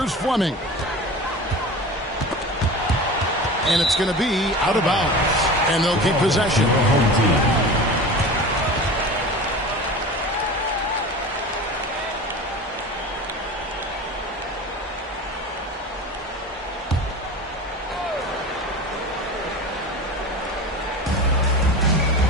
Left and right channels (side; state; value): both; normal; correlation 0.33